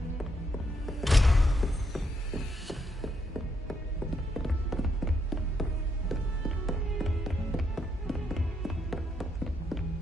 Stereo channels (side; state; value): both; normal; correlation 0.77